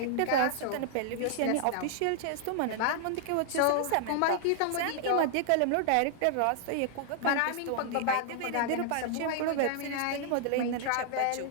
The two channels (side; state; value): both; different; correlation -0.01